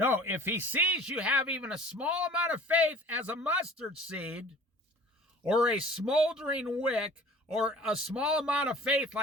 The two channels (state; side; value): normal; both; correlation 0.46